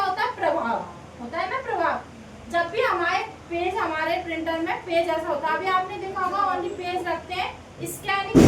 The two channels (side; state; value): both; identical; correlation 1.00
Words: होता है? प्रभाव होता है ना, प्रभाव। जब भी हमारे प्रिंटर में पेज ऐसा होता है, अभी आपने देखा होगा ओनली पेज रखते हैं, स्कैनिंग